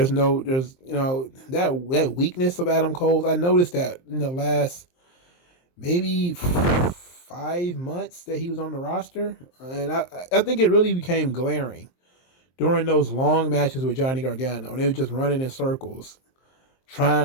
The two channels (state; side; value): late; right; 23 ms